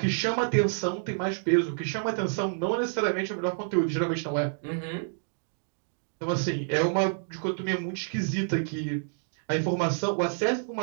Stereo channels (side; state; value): left; silent; digital silence